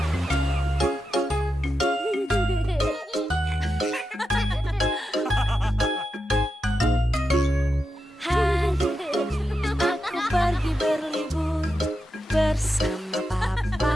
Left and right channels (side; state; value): both; normal; correlation 0.88